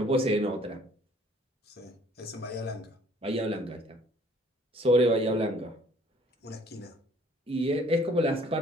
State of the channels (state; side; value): normal; both; correlation 0.58